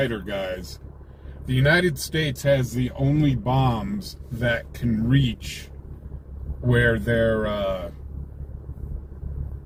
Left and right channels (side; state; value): both; identical; correlation 1.00